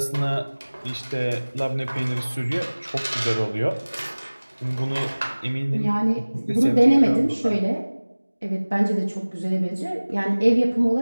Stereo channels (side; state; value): both; inverted; correlation -1.00